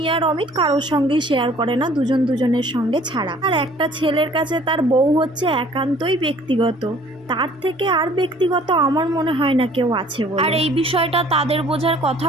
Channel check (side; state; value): both; normal; correlation 0.54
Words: আর অমিত কারোর সঙ্গেই শেয়ার করে না, দুজন দুজনের সঙ্গে ছাড়া। আর একটা ছেলের কাছে তার বউ হচ্ছে একান্তই ব্যক্তিগত, তার থেকে আর ব্যক্তিগত আমার মনে হয় না কেউ আছে বলে। আর এই বিষয়টা তাদের বোঝার